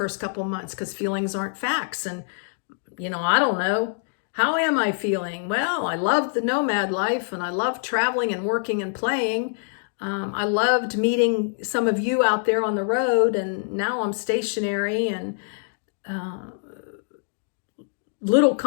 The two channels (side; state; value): right; silent; digital silence